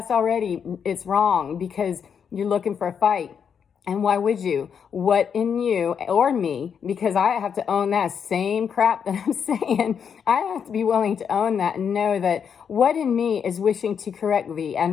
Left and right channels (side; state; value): right; quieter; 7.2 dB